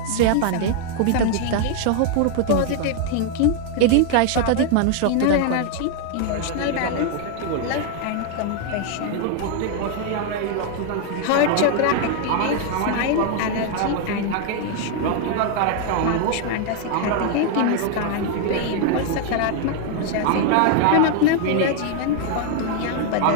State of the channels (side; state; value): both; different; correlation 0.00